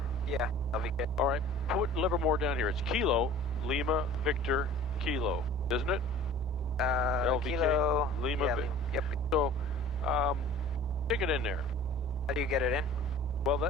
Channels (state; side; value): normal; both; correlation 0.45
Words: Yeah, LVK. All right, put Livermore down here. It's Kilo Lima Victor Kilo, isn't it? LVK Kilo Lima. Yeah, yep. So, stick it in there. How do you get it in? Well,